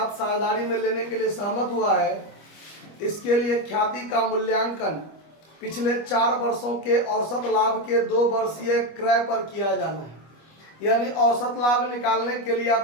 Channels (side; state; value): right; late; 25 ms